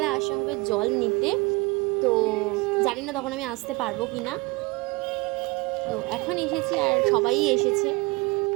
আসা হবে জল নিতে। তো জানি না তখন আমি আসতে পারবো কি না। তো এখন এসেছি আর সবাই এসেছে।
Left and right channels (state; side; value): quieter; left; 24.7 dB